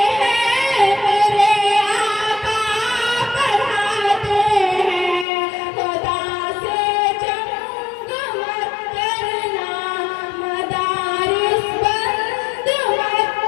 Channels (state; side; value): drops out; right; at 5.2 s